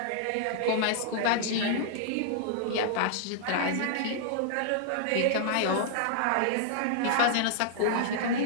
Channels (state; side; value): different; both; correlation -0.01